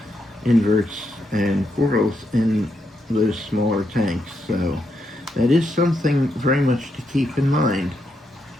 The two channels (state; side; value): normal; both; correlation 0.81